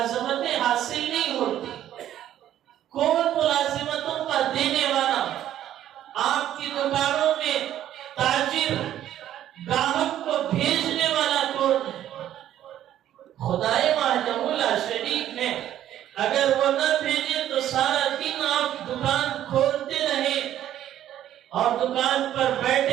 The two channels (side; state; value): left; quieter; 11.8 dB